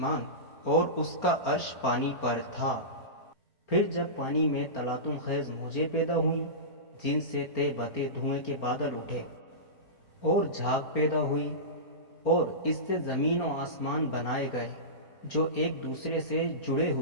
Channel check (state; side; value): late; right; 4.4 ms